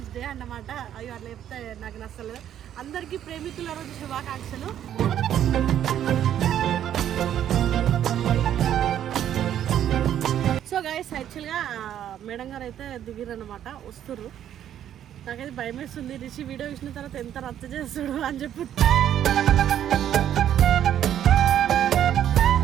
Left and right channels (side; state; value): left; quieter; 10.6 dB